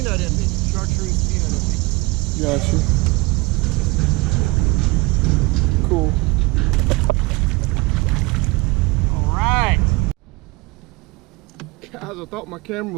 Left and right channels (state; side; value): quieter; left; 23.9 dB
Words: envy, chartreuse peanut envy. Gotcha. Cool. All right. Guys, I thought my camera